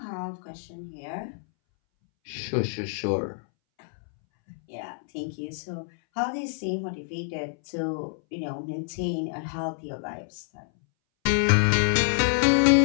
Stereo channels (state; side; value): silent; right; 60 dB below the other